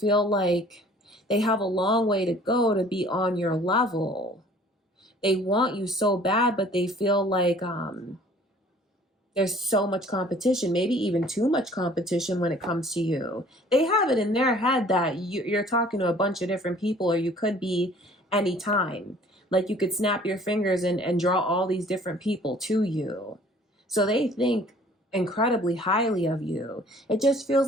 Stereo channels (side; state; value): both; normal; correlation 0.53